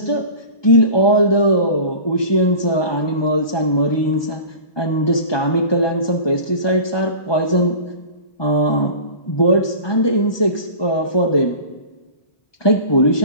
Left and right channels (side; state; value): right; late; 1.2 ms